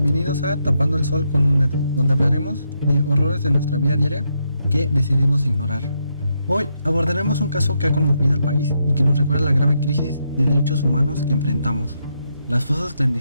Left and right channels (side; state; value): both; inverted; correlation -0.80